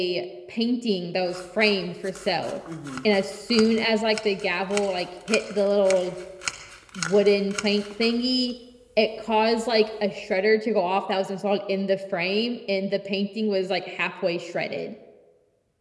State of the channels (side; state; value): both; identical; correlation 1.00